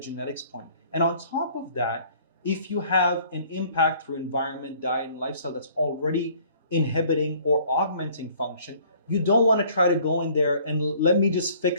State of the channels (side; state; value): both; inverted; correlation -0.56